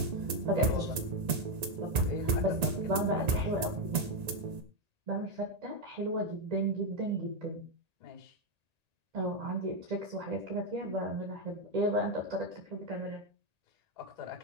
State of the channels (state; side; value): late; left; 1.8 ms